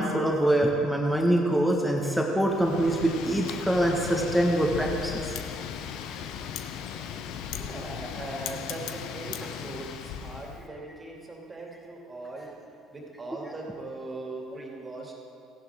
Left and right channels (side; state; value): both; normal; correlation 0.78